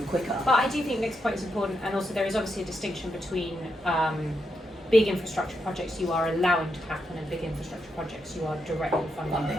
quicker. but I do think Nick's point is important, and also there is obviously a distinction between big infrastructure projects you are allowing to happen and big infrastructure projects you are directly funding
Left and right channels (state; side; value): normal; both; correlation 0.83